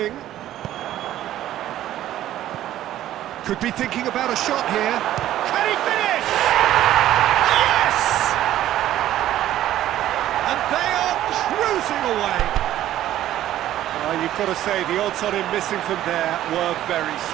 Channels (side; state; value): left; quieter; 13.0 dB